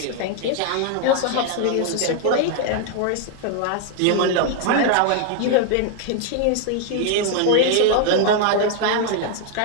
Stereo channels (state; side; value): different; both; correlation 0.00